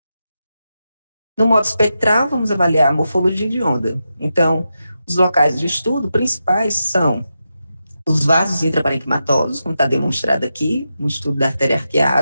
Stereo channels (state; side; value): inverted; both; correlation -0.88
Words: No modo espectral, vamos avaliar a morfologia de onda. Então, os locais de estudo principais são os vasos intraparenquimatosos, como está demonstrado aqui, no estudo da artéria